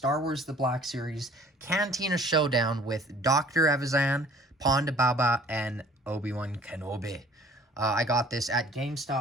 Wars The Black Series Cantina Showdown with Dr. Evazan, Ponda Baba, and Obi Wan Kenobi. I got this at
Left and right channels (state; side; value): normal; both; correlation 0.52